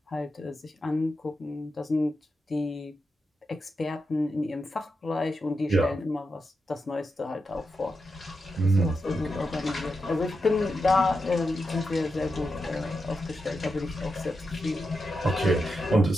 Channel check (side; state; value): both; normal; correlation 0.87